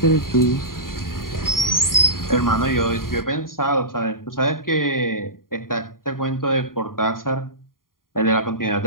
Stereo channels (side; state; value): right; late; 0.91 ms